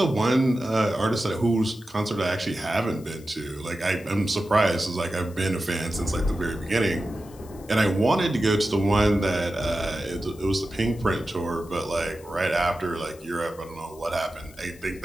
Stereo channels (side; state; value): left; noise; hiss, 24 dB below the sound